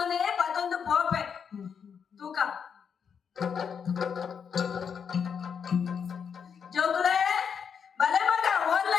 ಪತ್ತೊಂದು ಪೋಪೆ ತೂಕ ಜೋಗುಲೆ ಬಲೆ ಮಗ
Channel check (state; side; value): quieter; right; 6.9 dB